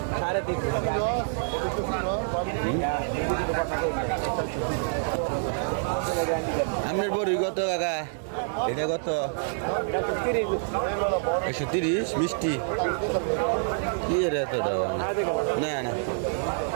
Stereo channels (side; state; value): left; silent; digital silence